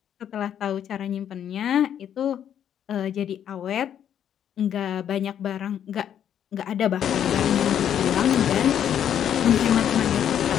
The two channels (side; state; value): right; quieter; 9.6 dB